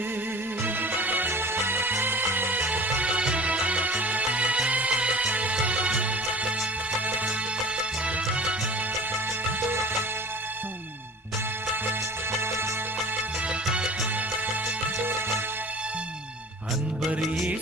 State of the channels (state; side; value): normal; both; correlation 0.42